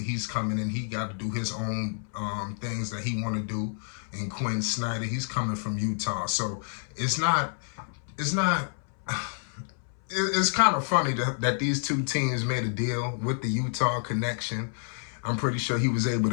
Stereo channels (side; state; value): right; silent; 59 dB below the other